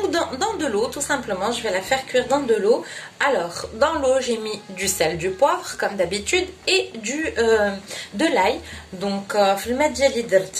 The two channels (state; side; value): identical; both; correlation 1.00